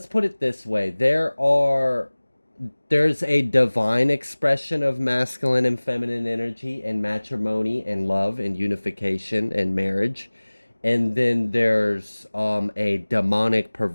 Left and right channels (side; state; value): both; inverted; correlation -1.00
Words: put it this way. There's a divine expression of masculine and feminine energy and matrimony and love and unification and marriage. And then there's a demonic